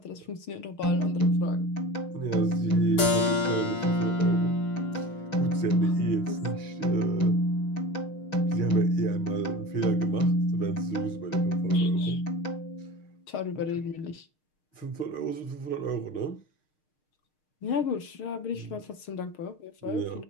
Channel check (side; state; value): right; late; 6.5 ms